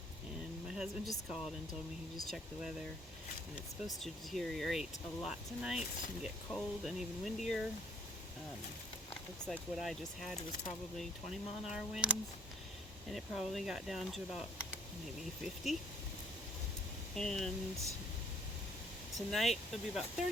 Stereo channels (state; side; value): normal; both; correlation 0.61